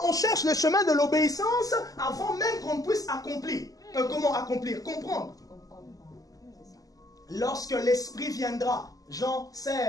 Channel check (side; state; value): right; late; 0.17 ms